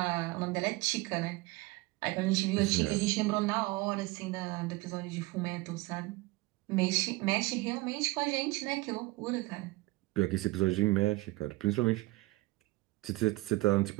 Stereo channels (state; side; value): quieter; left; 20.6 dB